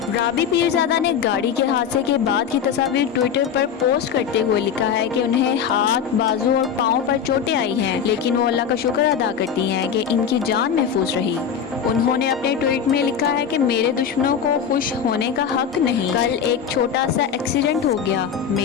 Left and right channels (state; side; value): quieter; right; 7.5 dB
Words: राबी पीरजादा ने गाड़ी के हादसे के बाद की तस्वीर ट्विटर पर पोस्ट करते हुए लिखा है कि उन्हें हाथ, बाजू और पाँव पर चोटें आई हैं, लेकिन वो अल्लाह का शुक्र अदा करती हैं कि इनकी जान महफूज रही। उन्होंने अपने ट्वीट में लिखा है कि मेरे दुश्मनों को खुश होने का हक नहीं। कल एक छोटा सा एक्सीडेंट हो गया।